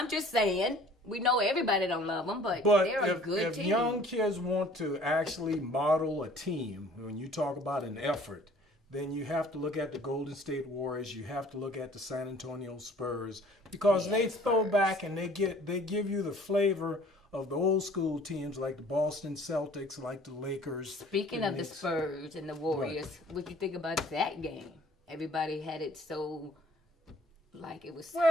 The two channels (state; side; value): normal; both; correlation 0.52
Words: just saying, we know everybody don't love them, but But they're a good if team. young kids want to actually model a team, when you talk about an effort, then you have to look at the Golden State Warriors. You have to look at the San Antonio Spurs because they throw back and they give you the flavor of the old school teams like the Boston Celtics, like the Lakers. Speaking of the Spurs and the Warriors, what you think about that game? Everybody had it so, like it was